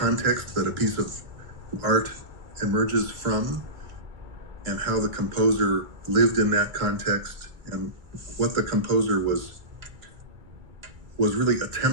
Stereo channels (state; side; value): late; left; 2.3 ms